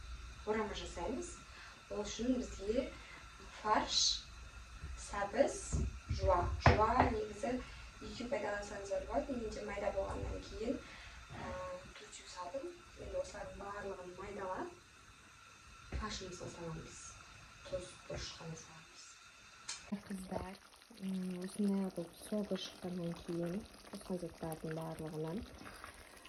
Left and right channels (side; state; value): both; identical; correlation 1.00